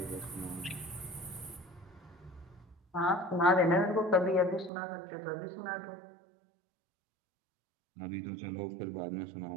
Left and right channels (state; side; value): drops out; left; at 4.7 s